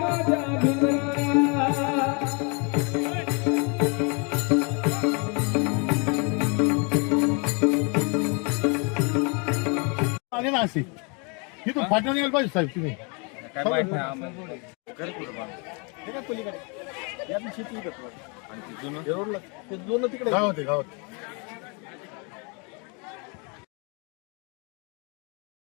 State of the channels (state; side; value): quieter; right; 33.9 dB